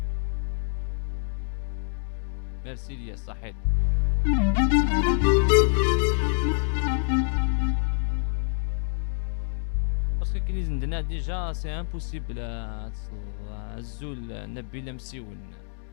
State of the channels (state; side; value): silent; right; digital silence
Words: ميرسي ليا صحيت. باسكو كي نزندنا ديجا سي امبوسيبل الزول نبيل مسيون.